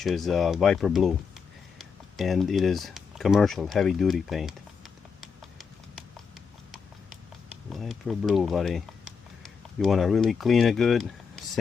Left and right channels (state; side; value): quieter; right; 5.9 dB